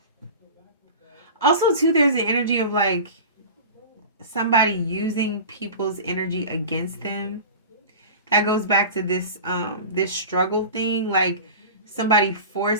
also too, there's an energy of like somebody using people's energy against them. That goes back to this struggle thing, like somebody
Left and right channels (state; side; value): inverted; both; correlation -0.34